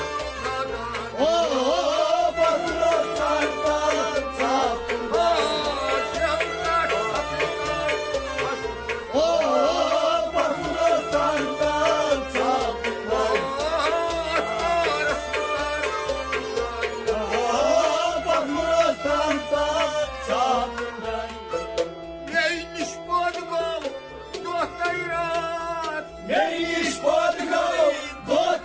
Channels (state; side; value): identical; both; correlation 1.00